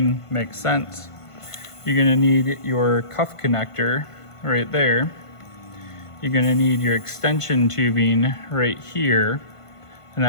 makes sense. You're gonna need your cuff connector right there. You're gonna need your extension tubing right here, and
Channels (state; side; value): late; right; 1.5 ms